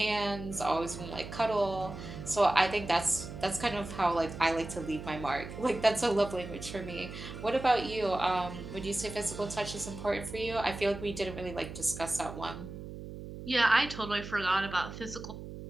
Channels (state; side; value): noise; right; hum, 11 dB below the sound